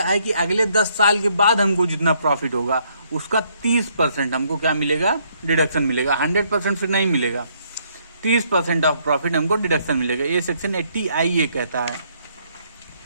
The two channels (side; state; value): both; inverted; correlation -0.69